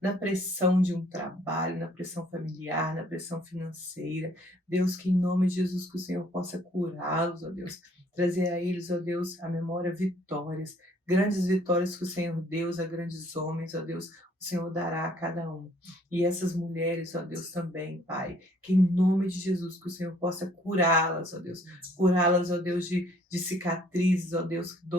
na pressão de um trabalho, na pressão familiar, na pressão financeira. Deus, que em nome de Jesus que o Senhor possa curá-los, ó Deus, trazer a eles, ó Deus, a memória vitórias, grandes vitórias que o Senhor Deus a grandes homens, ó Deus, o Senhor dará a cada um. E essas mulheres, ó Deus, também, Pai, que em nome de Jesus, que o Senhor possa curá-las, ó Deus, ó Deus, de cicatrizes, ó Deus,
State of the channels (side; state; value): both; normal; correlation 0.61